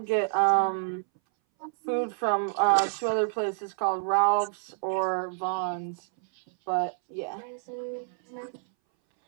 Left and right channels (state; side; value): silent; left; 59 dB below the other